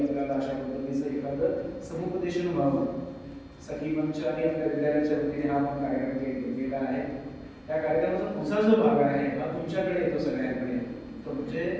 अशा पद्धतीचं एखादं समुपदेशन व्हावं. सखी मंच आणि आपल्या विद्यालयाच्या वतीने हा आपण कार्यक्रम केला आहे. त्या कार्यक्रमाचा पुढचा जो भाग आहे हा तुमच्याकडे येतो सगळ्यांकडे. तो म्हणजे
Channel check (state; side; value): identical; both; correlation 1.00